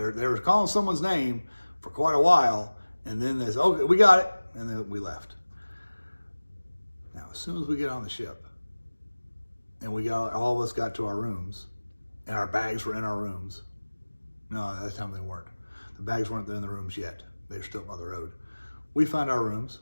were calling someone's name for quite a while, and then they said, okay, we got it, and then we left. Now, as soon as we get on the ship, and all of us got to our rooms, and our bags were in our rooms. No, at that time they weren't. The bags weren't in the rooms yet. They were still on the road. We found our rooms.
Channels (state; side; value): inverted; both; correlation -1.00